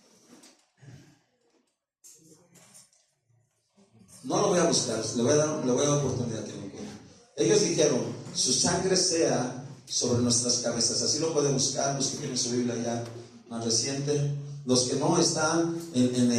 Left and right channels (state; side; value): identical; both; correlation 1.00